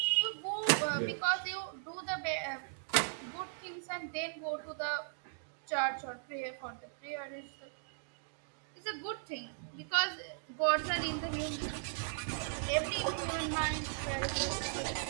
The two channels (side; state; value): left; silent; digital silence